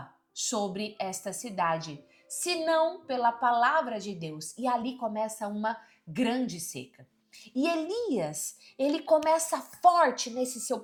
sobre esta cidade, senão pela palavra de Deus. E ali começa uma grande seca. E Elias, ele começa forte nesse seu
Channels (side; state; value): both; identical; correlation 1.00